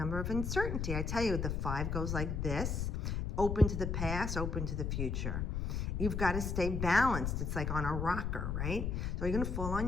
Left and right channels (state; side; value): noise; left; rumble, 1 dB below the sound